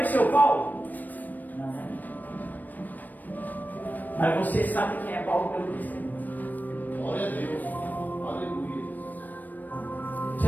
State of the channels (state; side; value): late; right; 0.086 ms